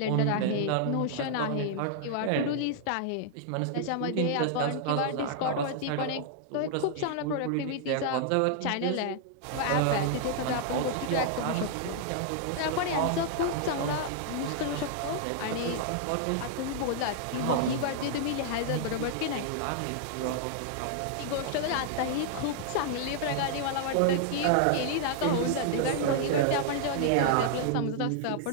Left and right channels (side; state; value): both; different; correlation -0.01